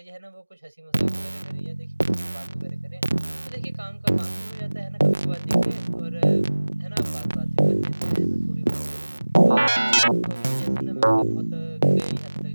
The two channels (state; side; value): inverted; both; correlation -1.00